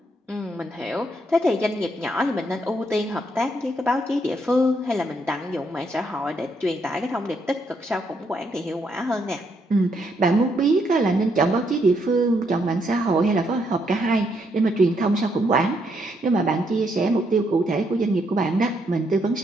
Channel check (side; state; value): both; normal; correlation 0.75